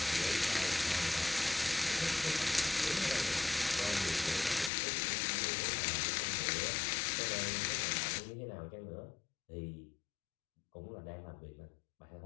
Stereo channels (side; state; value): right; drops out; at 4.7 s